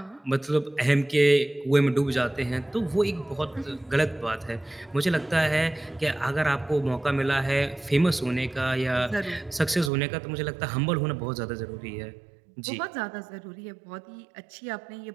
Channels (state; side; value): drops out; left; at 9.9 s